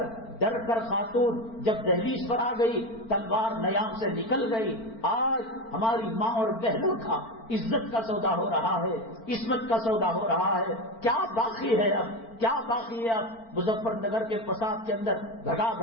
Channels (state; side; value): late; right; 4.4 ms